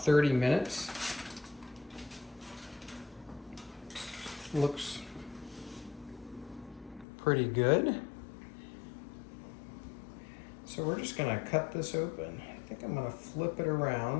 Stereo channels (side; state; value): right; drops out; at 7.1 s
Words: minutes. Looks pretty good. So we're just gonna cut this open. I think I'm gonna flip it